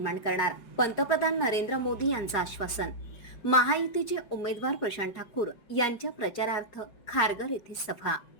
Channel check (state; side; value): late; right; 4.9 ms